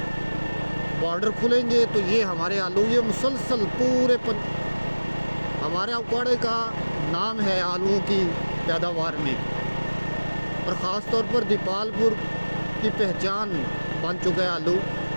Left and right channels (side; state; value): both; inverted; correlation -1.00